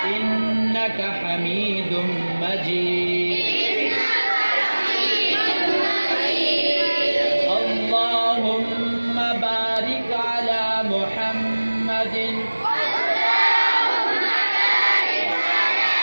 إنك حميد مجيد. اللهم بارك على محمد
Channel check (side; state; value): both; inverted; correlation -1.00